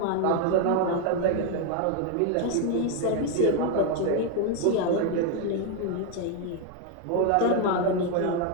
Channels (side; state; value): both; different; correlation 0.01